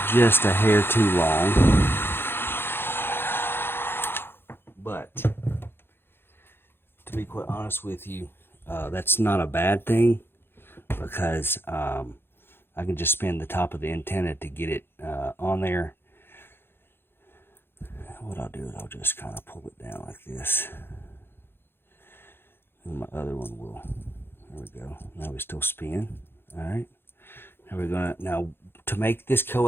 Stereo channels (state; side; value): late; right; 0.11 ms